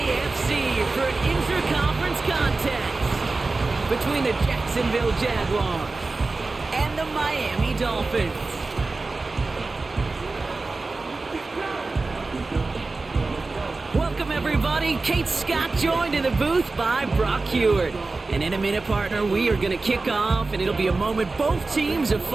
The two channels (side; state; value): left; quieter; 3.6 dB